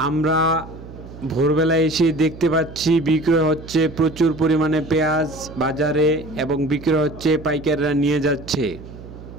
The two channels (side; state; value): right; noise; hum, 15 dB below the sound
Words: আমরা ভোরবেলা এসে দেখতে পাচ্ছি বিক্রি হচ্ছে প্রচুর পরিমাণে পেঁয়াজ বাজারে এবং বিক্রি হচ্ছে, পাইকাররা নিয়ে যাচ্ছে।